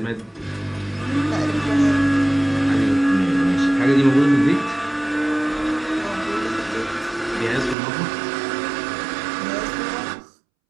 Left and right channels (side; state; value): left; drops out; at 7.8 s